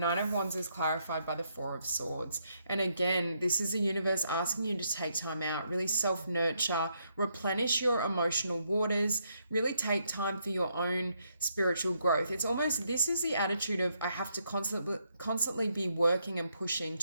of Wands is clarified by the Four of Swords. And again, this is the universe asking you to take time out, really self-nurture, replenish your emotional waters, really take time for your own spiritual growth. It's almost, this is the attitude of, I have to constantly be working and pushing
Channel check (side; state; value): both; inverted; correlation -0.76